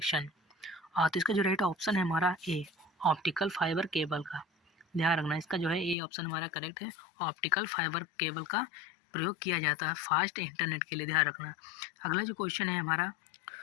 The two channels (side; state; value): right; drops out; at 6.0 s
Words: तो इसका जो राइट ऑप्शन है हमारा ए, ऑप्टिकल फाइबर केबल का। ध्यान रखना, इसका जो है ए ऑप्शन हमारा करेक्ट है, ऑप्टिकल फाइबर केबल का प्रयोग किया जाता है फास्ट इंटरनेट के लिए। ध्यान रखना। अगला जो क्वेश्चन है हमारा,